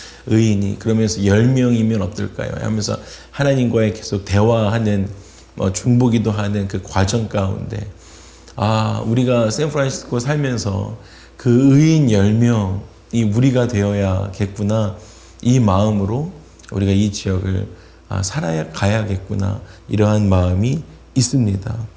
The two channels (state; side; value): identical; both; correlation 1.00